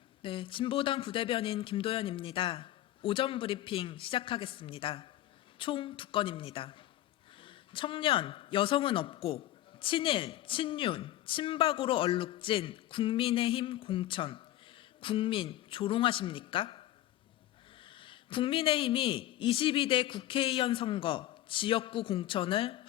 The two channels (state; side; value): quieter; right; 14.0 dB